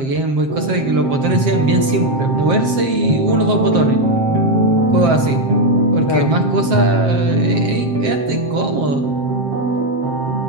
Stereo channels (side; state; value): left; late; 7.6 ms